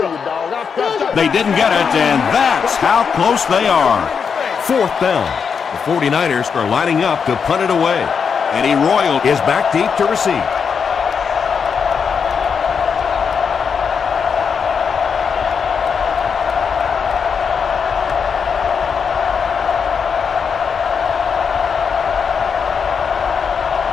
you, dog. They didn't get it, and that's how close they are. 4th down. The 49ers are lining up to punt it away. Eddie Royal is back deep to receive.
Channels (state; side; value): quieter; right; 6.3 dB